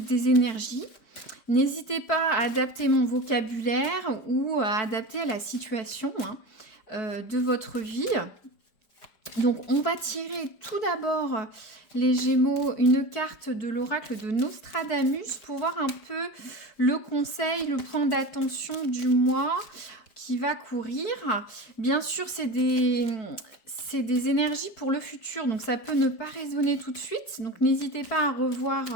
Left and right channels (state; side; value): late; right; 4.6 ms